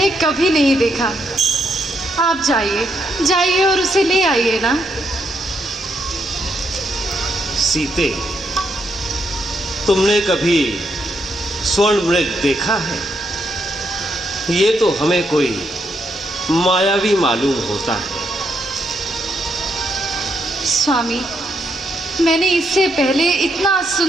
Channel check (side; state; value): both; normal; correlation 0.78